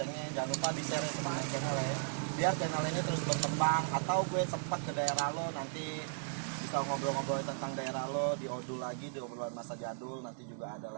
Jangan lupa di share teman main channel ya. Biar channel ini terus berkembang. Atau gue sempat ke daerah lo nanti bisa ngobrol-ngobrol tentang daerah lo di Odul lagi, di obrolan masa jadul nanti juga ada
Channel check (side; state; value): left; silent; 54 dB below the other